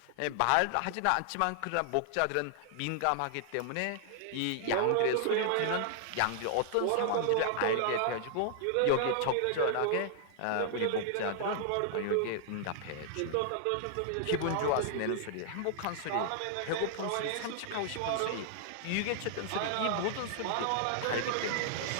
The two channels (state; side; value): different; both; correlation -0.01